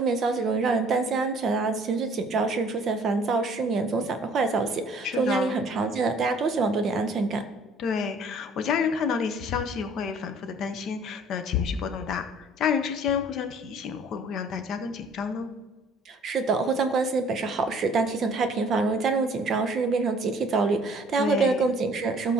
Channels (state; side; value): normal; both; correlation 0.55